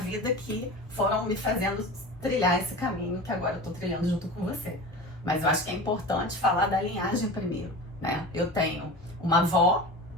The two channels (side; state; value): both; normal; correlation 0.32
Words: que foram me fazendo trilhar esse caminho que agora eu tô trilhando junto com você. Mas eu acho que é importante falar da linhagem primeiro, né? Eu tenho uma avó,